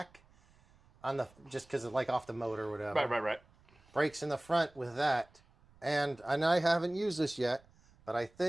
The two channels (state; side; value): noise; right; rumble, 29 dB below the sound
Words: just because of like off the motor or whatever. Right. Brakes in the front with that. And I haven't used this yet, but I